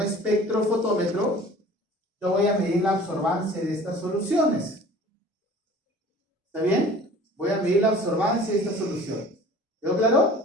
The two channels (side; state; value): both; normal; correlation 0.46